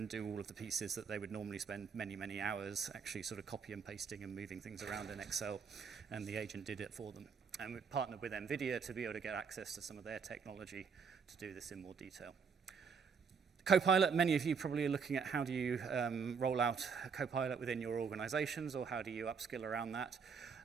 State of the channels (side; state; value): left; quieter; 6.0 dB